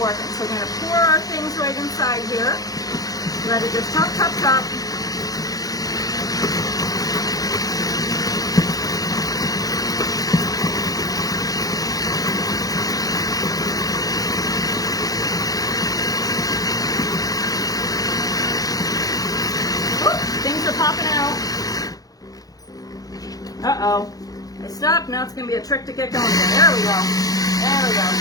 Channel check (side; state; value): right; late; 0.18 ms